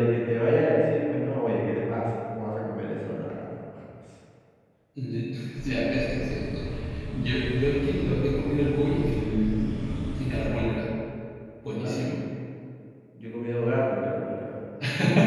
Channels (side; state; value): both; identical; correlation 1.00